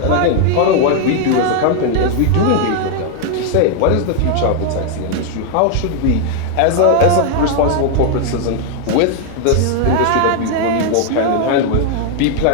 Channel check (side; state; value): both; different; correlation 0.00